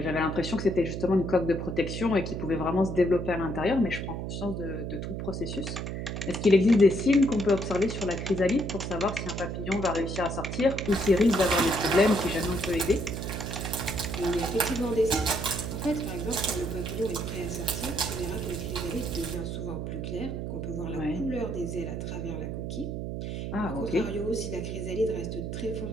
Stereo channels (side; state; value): right; noise; hum, 4 dB below the sound